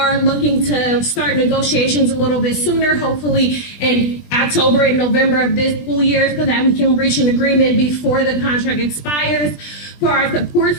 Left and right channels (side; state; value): right; late; 20 ms